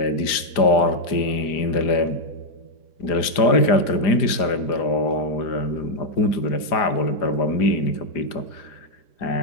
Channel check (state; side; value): late; right; 4.9 ms